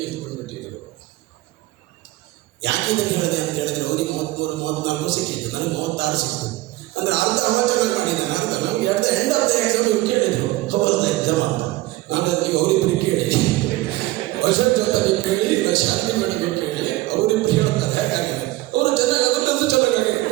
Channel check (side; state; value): left; quieter; 18.1 dB